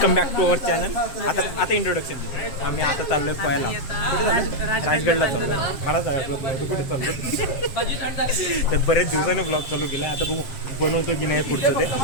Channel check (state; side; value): late; right; 7.7 ms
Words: back to our channel. आता इंट्रोडक्शन देतो. आम्ही आता चाललोय पळायला. कुठे चाललो. राजगडला चाललो. मला आठवत नव्हतं कुठे चाललो. तर बरेच दिवसाने ब्लॉग चालू केला. आता बघू बनवतो की नाही पुढचं ते.